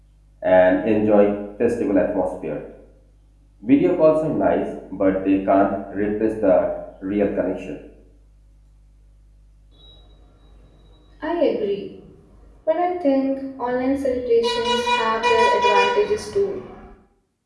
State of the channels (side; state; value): both; identical; correlation 1.00